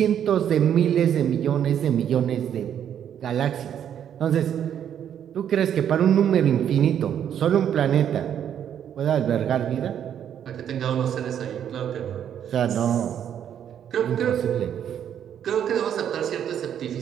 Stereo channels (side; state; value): left; quieter; 9.4 dB